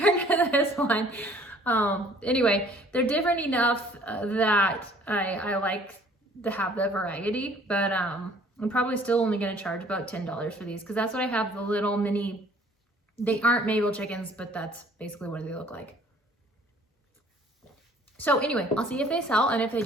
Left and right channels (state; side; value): normal; both; correlation 0.55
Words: to this one. Anyway, they're different enough that I like to have the variety, but I'm probably still only going to charge about $10 for these, because that's what I have, the little mini. They aren't Mabel chickens, but that's basically what they look like. So anyway, I'll see if they sell, and if they